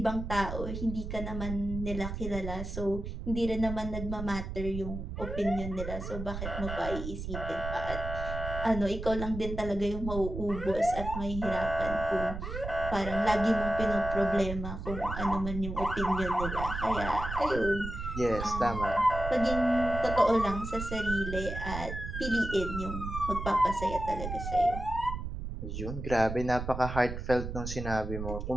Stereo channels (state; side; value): noise; right; rumble, 6 dB below the sound